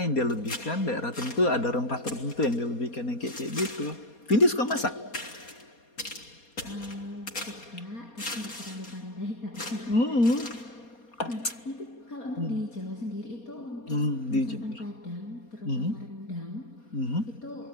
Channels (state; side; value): late; right; 4.2 ms